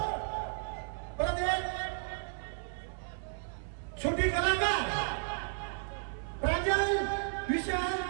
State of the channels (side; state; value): left; silent; 55 dB below the other